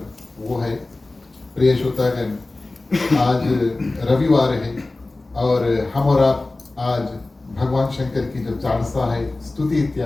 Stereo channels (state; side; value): quieter; right; 3.1 dB